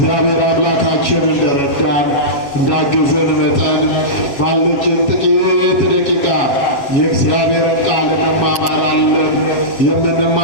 አምላካችን እንደረዳን እንዳገዘን መጠን ባለችን ጥቂት ደቂቃ የእግዚአብሔርን ቃል እንማማራለን።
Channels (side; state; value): right; late; 7.6 ms